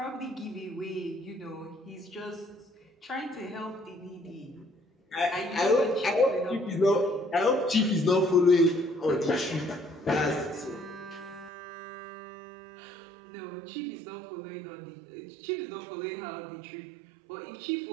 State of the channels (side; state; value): left; drops out; at 11.5 s